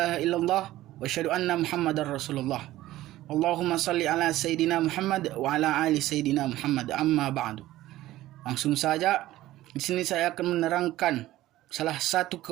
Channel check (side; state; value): left; quieter; 15.5 dB